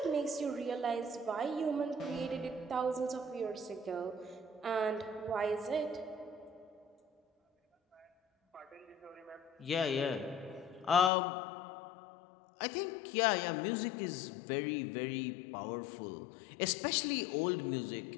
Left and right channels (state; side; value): drops out; right; at 11.1 s